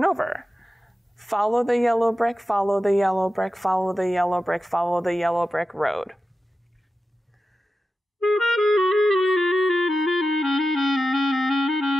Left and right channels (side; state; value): both; normal; correlation 0.92